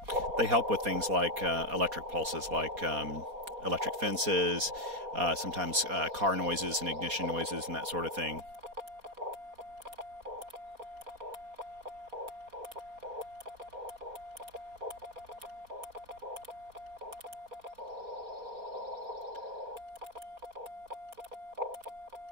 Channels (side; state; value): left; late; 4.2 ms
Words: They help with things like electric pulses, like electric fences, sometimes car noises and ignition noises and that sort of thing.